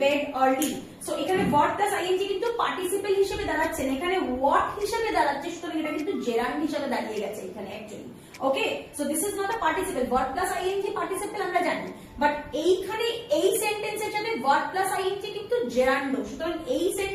bed early. So এখানে verb plus ing কিন্তু participle হিসেবে দাঁড়াচ্ছে না, এখানে what হিসেবে দাঁড়াচ্ছে, সুতরাং এটা কিন্তু gerund হিসেবে দাঁড়িয়ে গেছে এখানে actually. Okay, so this is not a participle. Verb plus ing participle আমরা জানি, বাট এইখানে এই সেন্টেন্সের সাথে verb plus ing কিন্তু gerund, সুতরাং এই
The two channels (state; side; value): identical; both; correlation 1.00